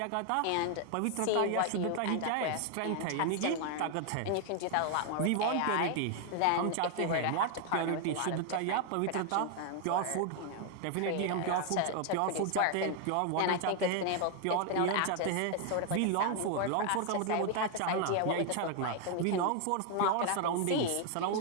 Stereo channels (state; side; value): different; both; correlation 0.00